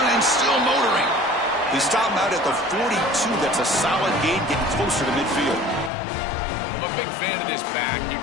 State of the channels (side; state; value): right; drops out; at 5.9 s